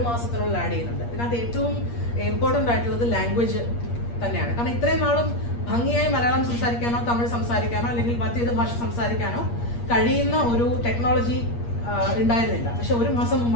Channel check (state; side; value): late; right; 8.5 ms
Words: മാസത്തിനുള്ളിൽ ആഡ് ചെയ്യുന്നുണ്ട്. ഇതിനകത്ത് ഏറ്റവും ഇമ്പോർട്ടൻ്റ് ആയിട്ടുള്ളത് ലാംഗ്വേജ് തന്നെയാണ്. കാരണം ഇത്രയും നാളും ഭംഗിയായി മലയാളം സംസാരിക്കാനോ തമിഴ് സംസാരിക്കാനോ അല്ലെങ്കിൽ മറ്റേത് ഭാഷ സംസാരിക്കാനോ കഴിയുന്ന ഒരു ടെക്നോളജി ഉണ്ടായിരുന്നില്ല. പക്ഷെ ഒരു മാസം